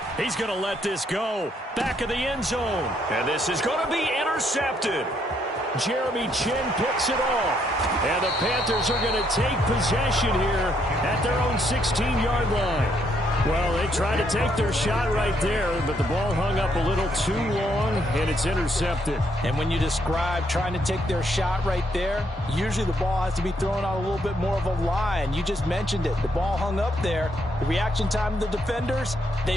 He's going to let this go. Back of the end zone. And this is going to be intercepted. Jeremy Chin picks it off. And the Panthers are going to take possession here at their own 16-yard line. Well, they tried to take their shot right there, but the ball hung up a little too long, and it's intercepted. And when you describe trying to take their shot right there, usually the ball has to be thrown out a little bit more of a line. You just mentioned it. The ball hung up there. The reaction time of the defenders,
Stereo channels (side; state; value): both; normal; correlation 0.73